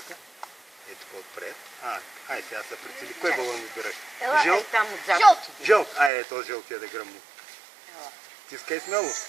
Ето по-отпред. Ай, сега се прицели. Кой балон избираш? Жълт? Там отзад. Жълт. Ето жълтия да гръмни. Тискай смело.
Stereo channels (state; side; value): drops out; left; at 6.1 s